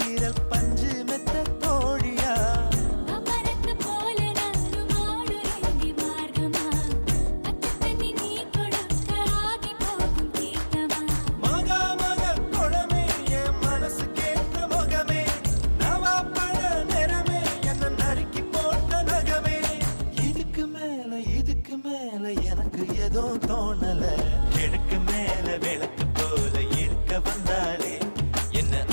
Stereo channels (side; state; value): both; inverted; correlation -1.00